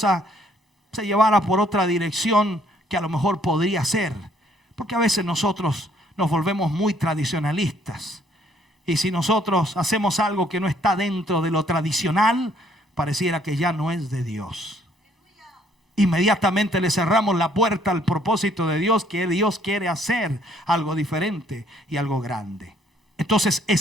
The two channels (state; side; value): normal; both; correlation 0.65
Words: se llevara por otra dirección que a lo mejor podría ser. Porque a veces nosotros nos volvemos muy tradicionalistas. Y si nosotros hacemos algo que no está dentro de lo tradicional, pareciera que ya no es de Dios. Inmediatamente le cerramos la puerta al propósito de Dios, que Dios quiere hacer algo diferente y algo grande. Entonces